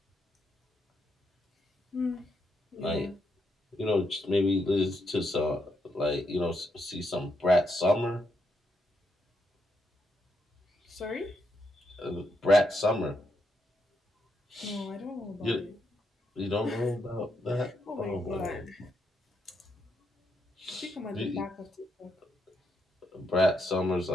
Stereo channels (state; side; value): normal; both; correlation 0.79